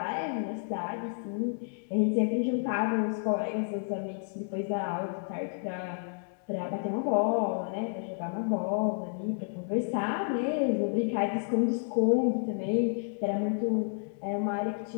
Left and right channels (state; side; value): silent; right; digital silence